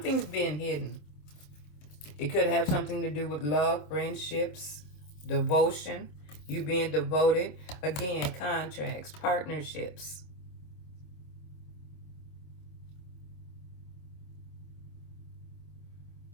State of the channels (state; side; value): late; right; 27 ms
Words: being hidden. It could have something to do with love, friendships, devotion, you being devoted. Again, contracts, partnerships.